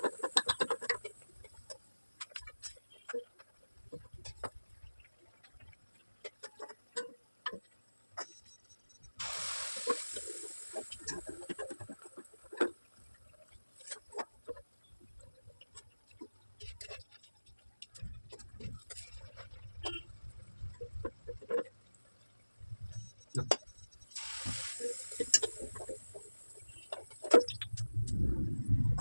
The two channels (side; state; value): both; inverted; correlation -1.00